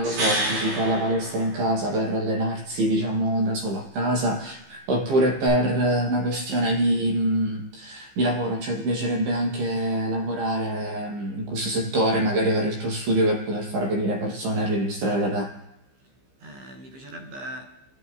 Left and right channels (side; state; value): left; late; 15 ms